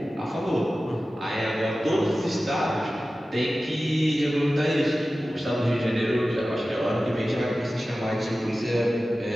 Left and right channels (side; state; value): both; normal; correlation 0.95